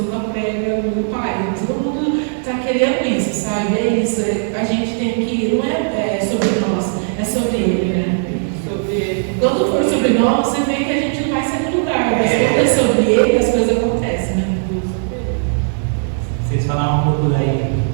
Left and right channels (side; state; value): left; silent; digital silence